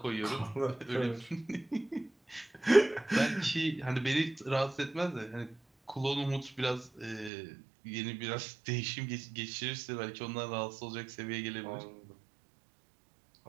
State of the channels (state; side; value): drops out; left; at 7.3 s